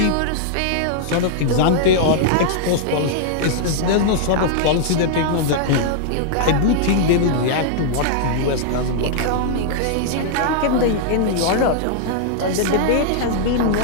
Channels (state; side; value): different; both; correlation -0.01